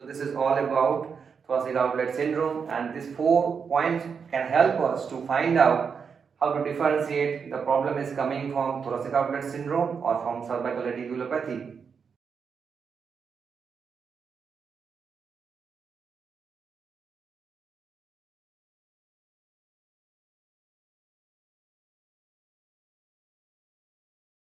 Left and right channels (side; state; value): left; quieter; 6.1 dB